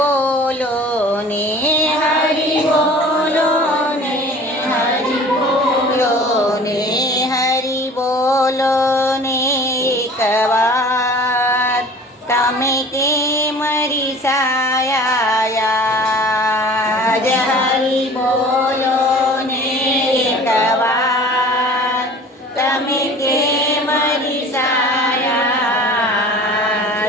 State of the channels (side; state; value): both; normal; correlation 0.44